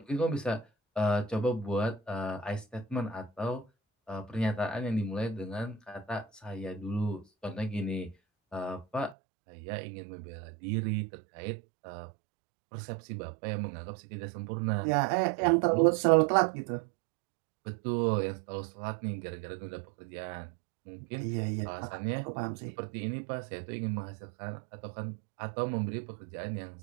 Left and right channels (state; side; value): drops out; left; at 9.2 s